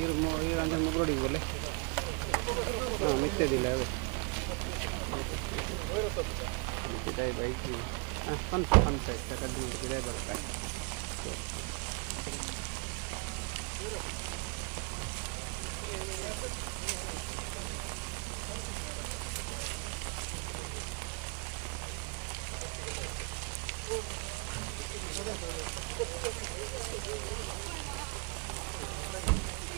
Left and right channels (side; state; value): left; quieter; 33.0 dB